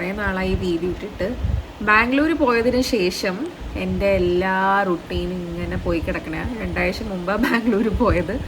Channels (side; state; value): both; identical; correlation 1.00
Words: നാളായി video ഇട്ടിട്ട്. ബാംഗ്ലൂർ പോയതിന് ശേഷം എൻ്റെ എല്ലാ റുട്ടീനും ഇങ്ങനെ പോയി കിടക്കണേ. 2 ആഴ്ച മുമ്പാണ് ബാംഗ്ലൂർ പോയത്.